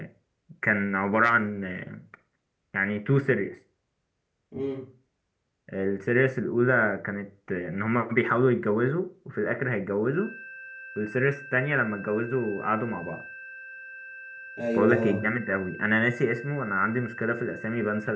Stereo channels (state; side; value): identical; both; correlation 1.00